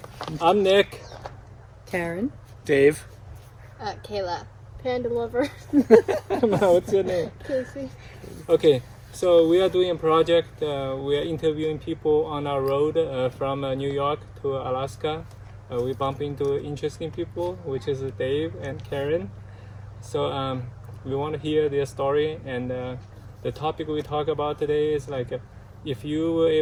I'm Nick. Karen. Dave. Kayla. Panda lover. What's your name? Casey. Okay. So we are doing a project. We are interviewing people on our road from New York to Alaska. We bump into interesting people, which is Dave and Karen. So we want to hear their story, and the topic we talk about today is like if you were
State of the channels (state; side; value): identical; both; correlation 1.00